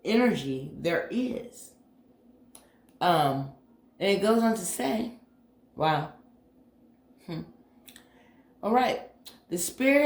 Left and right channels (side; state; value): both; identical; correlation 1.00